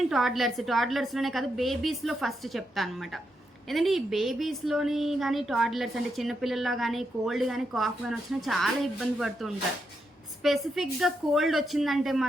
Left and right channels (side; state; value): both; normal; correlation 0.82